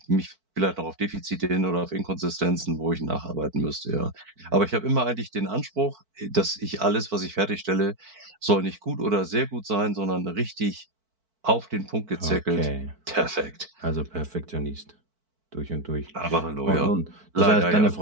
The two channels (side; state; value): left; late; 4.5 ms